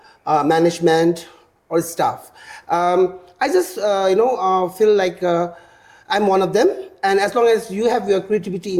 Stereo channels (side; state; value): both; identical; correlation 1.00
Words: management or staff. I just, feel like I'm one of them. And as long as you have your creativity